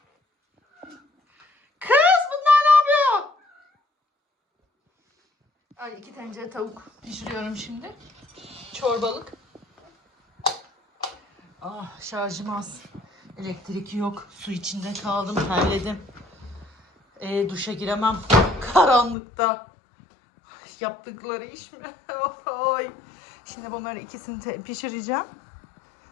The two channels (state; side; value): drops out; right; at 19.2 s